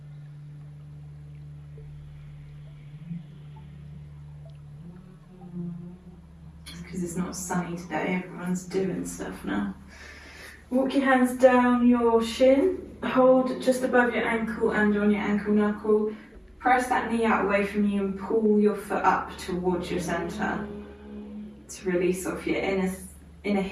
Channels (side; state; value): both; identical; correlation 1.00